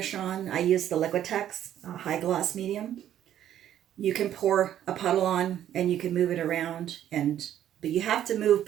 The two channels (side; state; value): left; quieter; 11.1 dB